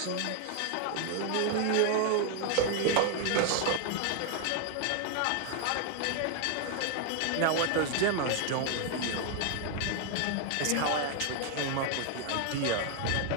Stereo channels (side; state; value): both; different; correlation 0.00